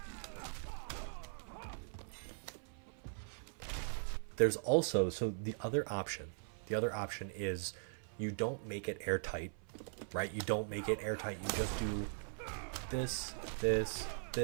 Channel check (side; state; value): left; silent; 51 dB below the other